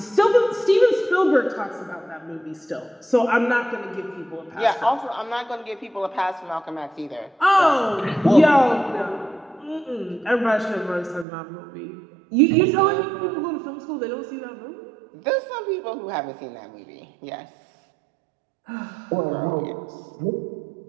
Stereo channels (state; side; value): drops out; left; at 11.2 s